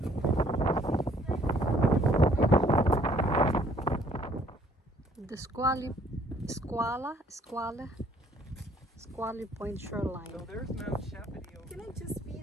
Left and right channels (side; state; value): both; normal; correlation 0.61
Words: the Squally Point shoreline. So there's Mount Shepity over Can I just be